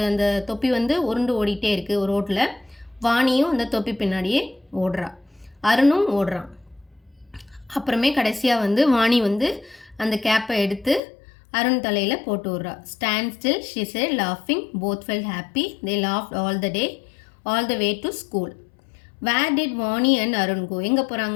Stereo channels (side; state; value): right; drops out; at 11.0 s